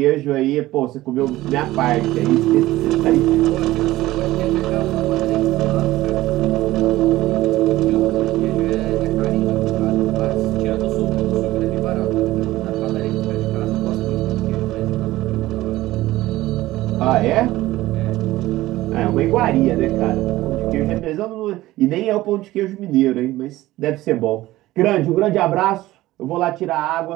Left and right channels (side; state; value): left; quieter; 16.8 dB